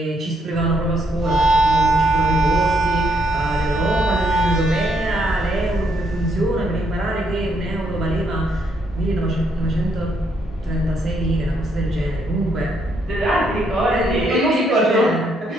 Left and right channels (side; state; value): both; normal; correlation 0.74